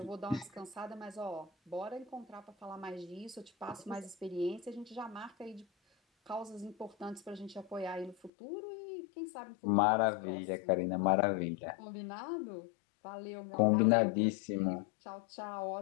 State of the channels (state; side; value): drops out; right; at 8.3 s